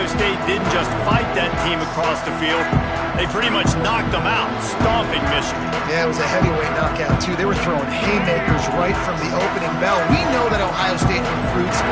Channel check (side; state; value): both; identical; correlation 1.00